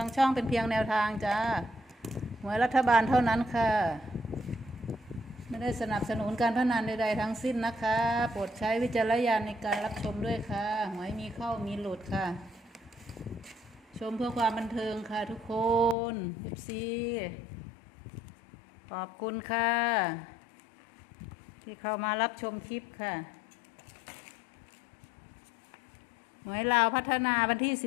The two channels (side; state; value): right; drops out; at 16.0 s